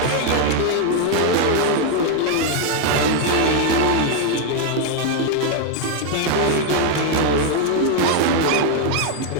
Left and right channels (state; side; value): different; both; correlation 0.01